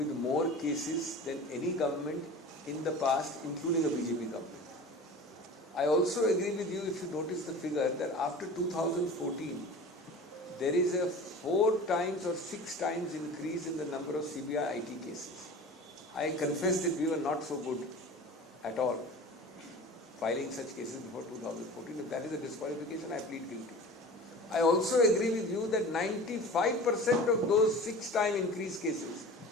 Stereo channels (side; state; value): both; normal; correlation 0.37